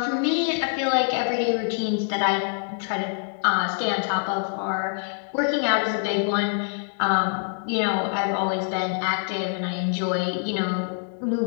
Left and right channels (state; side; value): silent; right; 62 dB below the other